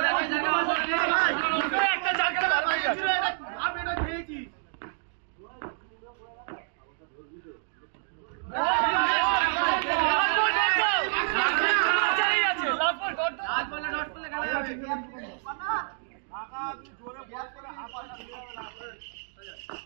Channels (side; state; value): left; silent; digital silence